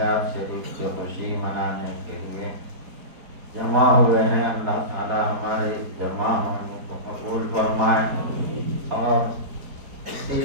شریف کی خوشی منانے کے لیے جمع ہوئے ہیں۔ اللہ تعالی ہمارے اس جمع ہونے کو قبول فرمائے، اور اسی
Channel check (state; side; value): late; left; 4.5 ms